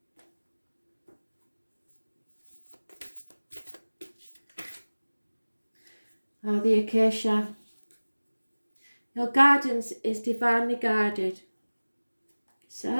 Oh, the acacia. Your guidance is divinely guided.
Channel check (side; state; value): both; inverted; correlation -1.00